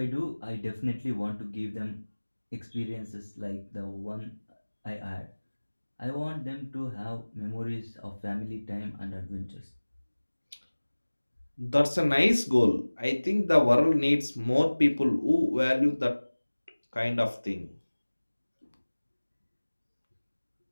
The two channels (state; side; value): inverted; both; correlation -1.00